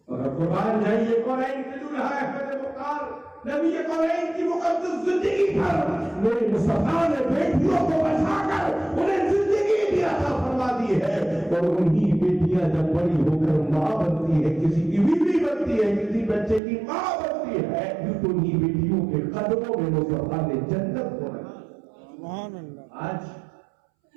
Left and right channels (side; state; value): left; drops out; at 16.6 s